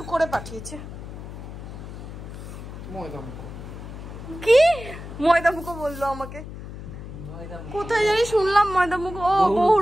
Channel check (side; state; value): left; noise; hum, 11 dB below the sound